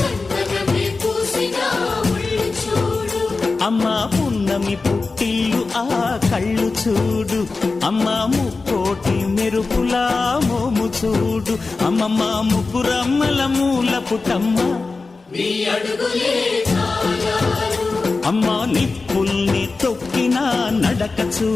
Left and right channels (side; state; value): right; quieter; 3.9 dB